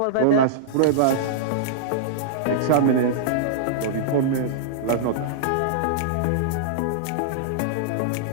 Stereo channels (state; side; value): different; both; correlation -0.02